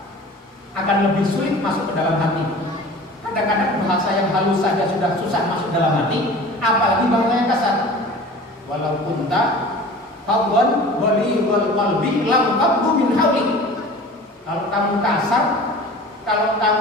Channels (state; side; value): normal; both; correlation 0.41